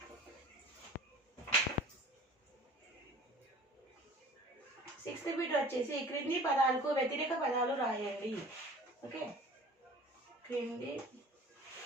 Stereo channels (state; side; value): normal; both; correlation 0.44